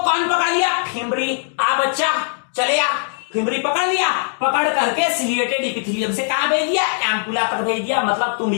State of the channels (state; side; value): silent; right; digital silence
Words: पकड़ लिया? फिमरी। आ बच्चा चले आ, फिमरी पकड़ लिया, पकड़ करके सिलिएटेड इपिथेलियम से कहां भेज दिया? एम्पुला तक भेज दिया, मतलब